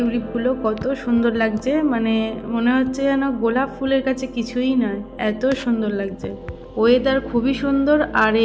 কত সুন্দর লাগছে, মানে মনে হচ্ছে যেন গোলাপ ফুলের কাছে কিছুই নয়, এত সুন্দর লাগছে। ওয়েদার খুবই সুন্দর, আর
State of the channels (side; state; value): both; identical; correlation 1.00